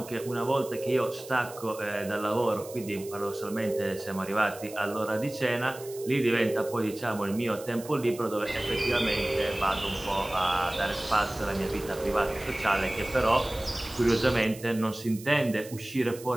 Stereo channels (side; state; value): right; noise; hiss, 17 dB below the sound